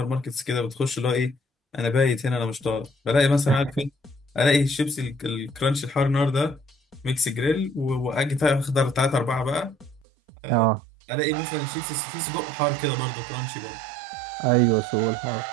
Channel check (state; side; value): drops out; left; at 10.0 s